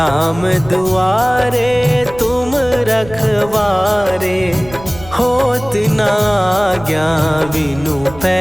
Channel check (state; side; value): noise; right; rumble, 17 dB below the sound